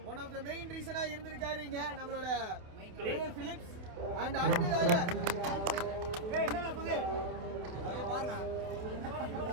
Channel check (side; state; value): left; late; 28 ms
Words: One of the main reason இருந்திருக்காரு இங்க நம்மளோட பிலிப்ஸ் and அடுத்ததாக என்னங்க புது அது பாருங்க.